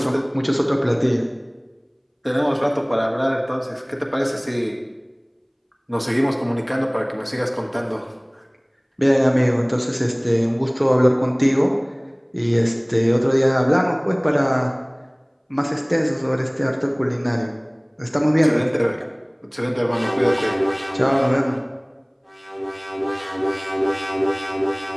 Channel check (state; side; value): identical; both; correlation 1.00